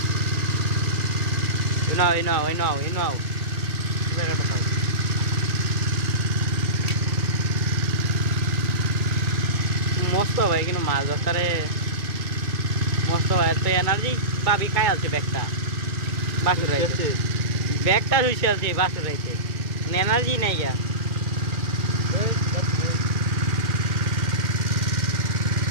মস্ত ভাই কিন্তু মাছ ধরতে মস্ত ভাই তো এনার্জি পাবি খাই আছে ব্যাগটা বাসুর রাইছে ব্যাগটা শুইছে আছে বাসুর রাইছে মানে এনার্জি নাই গা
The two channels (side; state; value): left; late; 2.2 ms